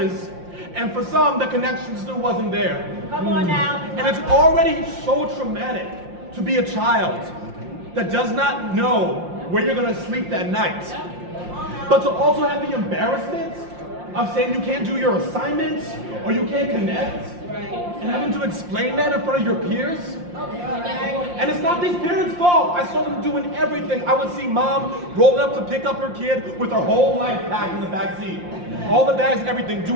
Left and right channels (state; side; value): late; left; 5.7 ms